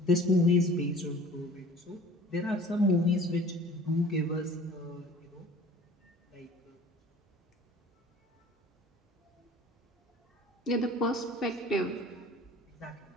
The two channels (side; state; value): both; normal; correlation 0.47